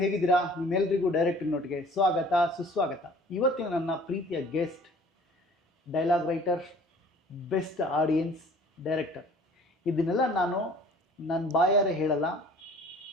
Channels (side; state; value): both; normal; correlation 0.50